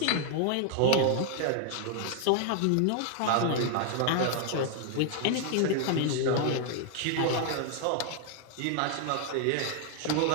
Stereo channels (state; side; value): different; both; correlation 0.00